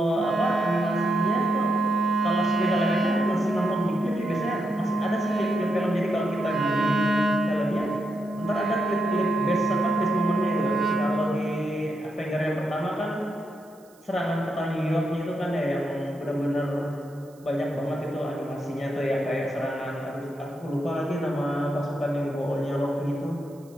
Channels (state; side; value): noise; right; hiss, 30 dB below the sound